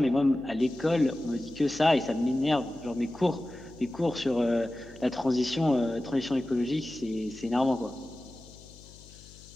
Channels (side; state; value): left; noise; hum, 21 dB below the sound